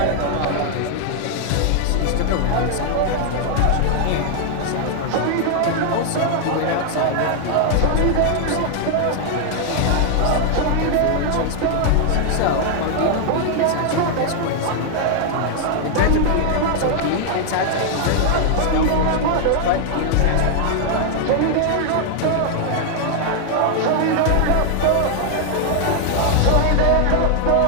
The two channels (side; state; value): both; different; correlation 0.00